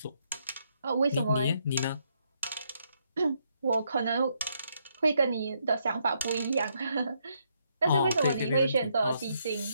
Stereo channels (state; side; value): inverted; both; correlation -0.75